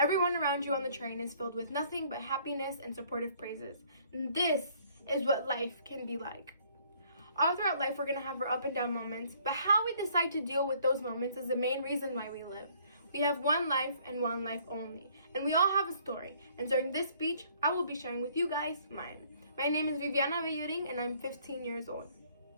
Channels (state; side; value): inverted; both; correlation -0.61